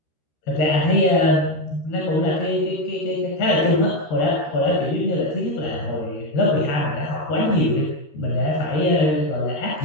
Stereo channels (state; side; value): late; right; 13 ms